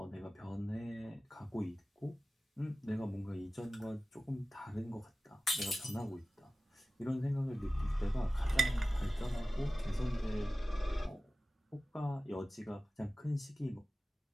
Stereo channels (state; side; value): normal; both; correlation 0.96